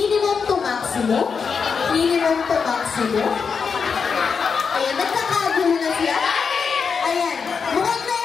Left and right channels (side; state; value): right; quieter; 5.8 dB